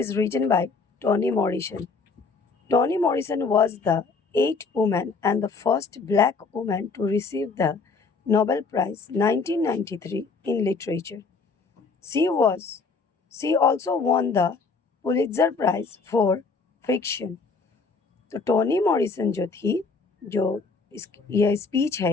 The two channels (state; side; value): quieter; right; 4.5 dB